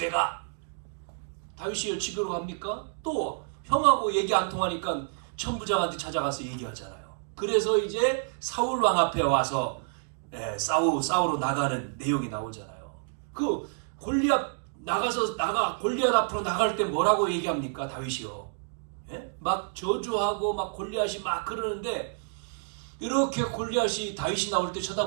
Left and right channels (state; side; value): silent; left; digital silence